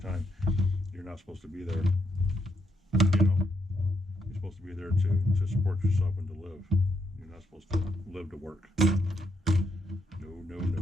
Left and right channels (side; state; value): both; normal; correlation 0.78